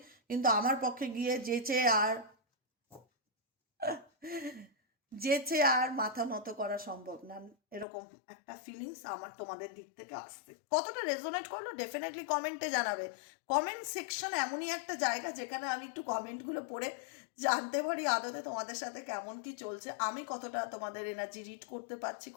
কিন্তু আমার পক্ষে গিয়ে যেচে আর মাথা নত করা সম্ভব না, এরকম একটা ফিলিংস আমার তোমাদের দিক থেকে আসছে। কতটা রেজোনেট করলো ডেফিনেটলি কমেন্টে জানাবে। কমেন্ট সেকশন এমনই একটা জায়গা যেখানে আমি একটু কমেন্টগুলো পড়ে জানতে পারি আদতে তোমাদের সাথে কেমন কি চলছে, আমি কতটা তোমাদের এনার্জি রিড করতে পারছি,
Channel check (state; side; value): drops out; right; at 7.9 s